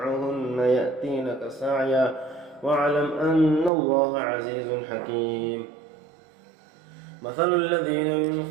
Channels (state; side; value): drops out; left; at 3.7 s